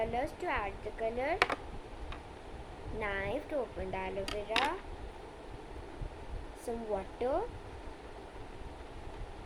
to add the color, knife to open the aloe vera, some water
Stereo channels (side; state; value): both; identical; correlation 1.00